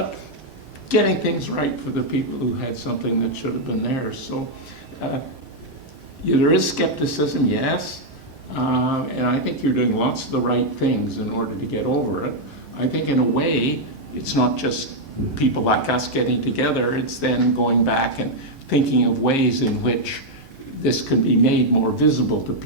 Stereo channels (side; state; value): both; normal; correlation -0.02